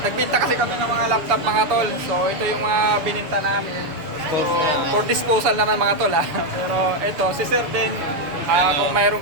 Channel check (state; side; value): late; left; 6.8 ms